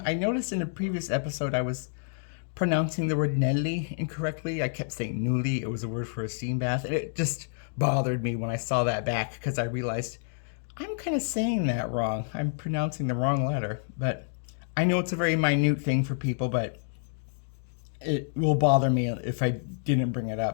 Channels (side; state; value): right; silent; digital silence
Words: I noticed in a previous episode I was pronouncing the word Nelly incorrectly. I kept saying Nuli, it was a word for a steam bath, and it just bothered me when I saw that back because I realized I'm kind of saying that wrong. I'm pronouncing the wrong letter, but I know it's a very minute thing for people, but it will bother me if I didn't bring it